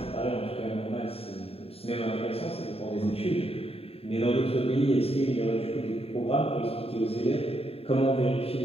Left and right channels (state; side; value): late; right; 0.28 ms